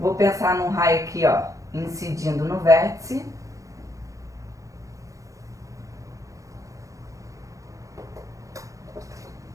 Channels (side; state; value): left; late; 0.16 ms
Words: pensar num raio aqui, ó. Incidindo no vértice.